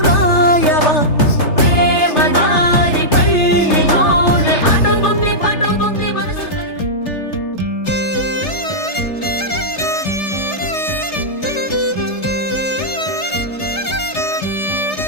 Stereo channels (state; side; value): late; right; 3.3 ms